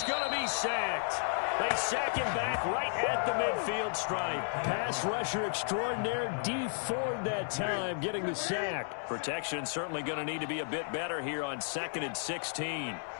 going to be sacked. They sack him back right at the midfield stripe. Pass rusher extraordinaire, Dee Ford that time, getting the sack. Protection certainly going to need to be a bit better here on 2nd and 16.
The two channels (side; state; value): right; silent; 56 dB below the other